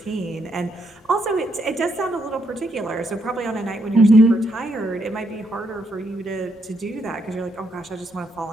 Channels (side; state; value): both; normal; correlation 0.77